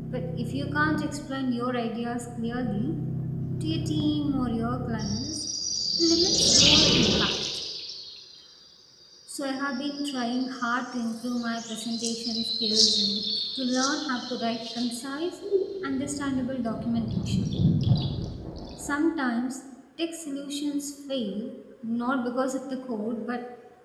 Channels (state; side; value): identical; both; correlation 1.00